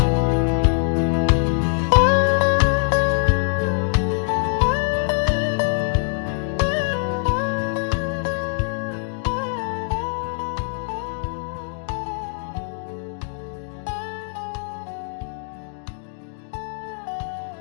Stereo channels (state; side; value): silent; right; 63 dB below the other